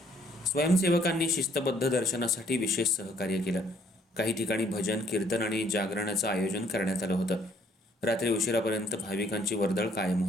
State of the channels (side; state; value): both; normal; correlation 0.64